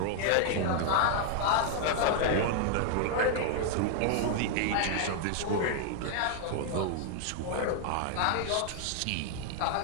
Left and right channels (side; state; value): both; different; correlation 0.00